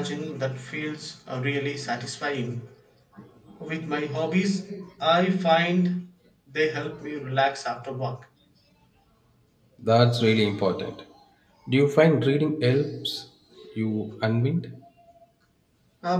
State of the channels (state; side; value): identical; both; correlation 1.00